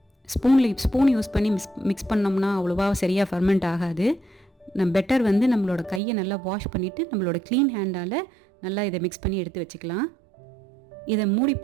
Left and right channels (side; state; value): left; drops out; at 6.0 s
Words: ஸ்பூன் யூஸ் பண்ணி மிக்ஸ் பண்ணோம்னா அவ்வளோவா சரியாக ஃபர்மெண்ட் ஆகாது. பெட்டர் நம்மளோட கையை நல்லா வாஷ் பண்ணிவிட்டு நம்மளோட க்ளீன் ஹேண்டால் நல்லா இதை மிக்ஸ் பண்ணி எடுத்து வச்சுக்கலாம். இதை